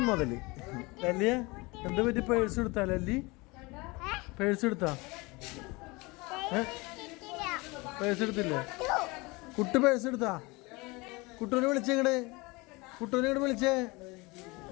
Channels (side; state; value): right; quieter; 24.9 dB